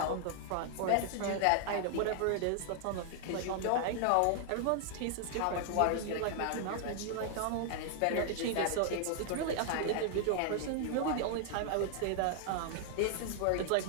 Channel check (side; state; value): both; different; correlation 0.00